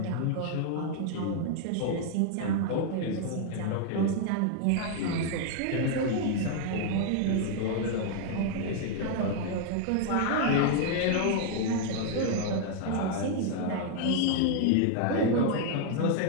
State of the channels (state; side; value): different; both; correlation 0.00